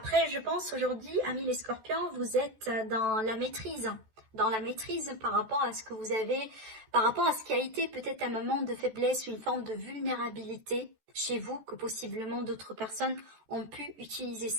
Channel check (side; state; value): left; late; 14 ms